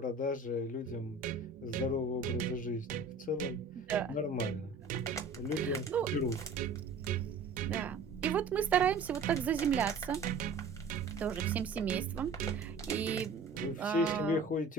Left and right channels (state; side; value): quieter; left; 4.1 dB